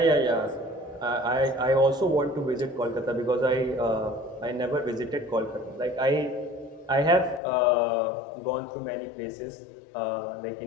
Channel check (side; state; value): right; drops out; at 7.4 s